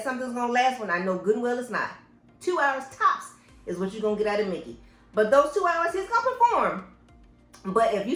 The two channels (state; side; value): identical; both; correlation 1.00